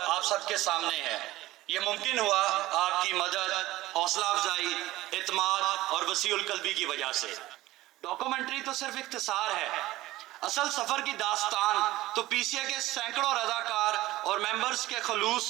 آپ سب کے سامنے ہے۔ یہ ممکن ہوا آپ کی مدد، حوصلہ افزائی، اعتماد اور وسیع القلبی کی وجہ سے۔ ڈاکومنٹری تو صرف اختصار ہے، اصل سفر کی داستان تو PCA کے سینکڑوں رضاکار اور ممبرز کے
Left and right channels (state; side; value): quieter; left; 17.0 dB